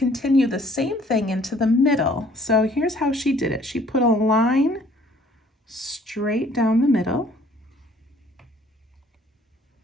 the same thing into the middle. So here's how she did it. She put a line straight down the middle.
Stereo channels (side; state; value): both; normal; correlation 0.58